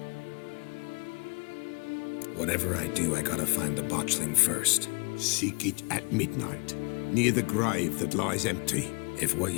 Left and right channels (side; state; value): right; quieter; 31.4 dB